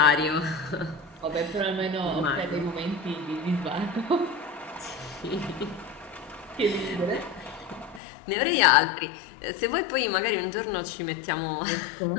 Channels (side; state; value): right; drops out; at 8.0 s